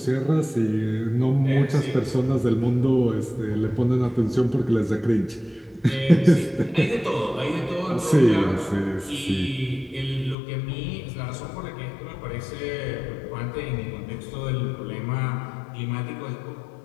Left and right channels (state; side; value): drops out; right; at 10.4 s